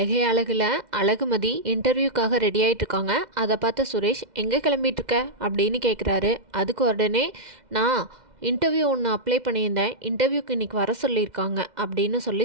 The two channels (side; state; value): left; late; 2.0 ms